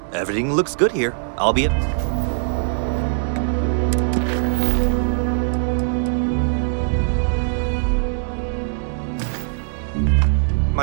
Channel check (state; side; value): silent; left; digital silence